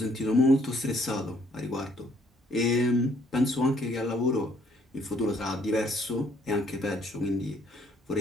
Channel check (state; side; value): normal; both; correlation 0.65